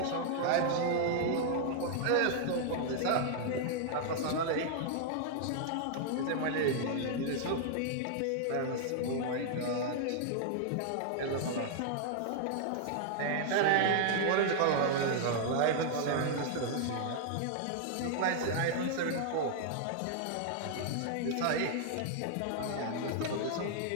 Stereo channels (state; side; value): different; both; correlation -0.01